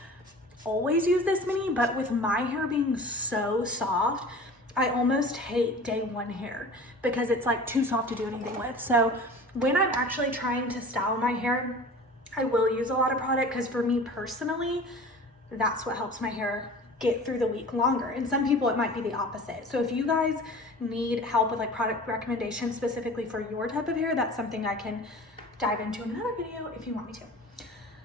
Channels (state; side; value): normal; both; correlation 0.40